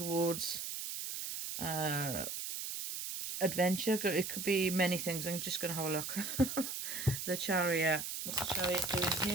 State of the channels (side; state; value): right; noise; hiss, 5 dB below the sound